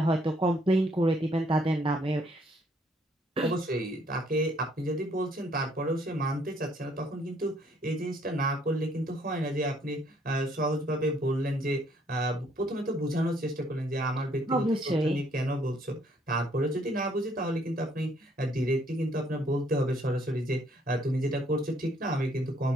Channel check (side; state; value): both; normal; correlation 0.66